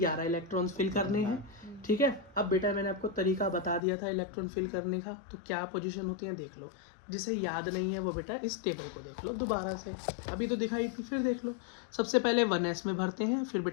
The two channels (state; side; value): drops out; right; at 3.8 s